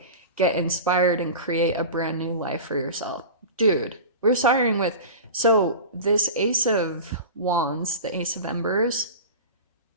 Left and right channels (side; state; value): both; inverted; correlation -0.31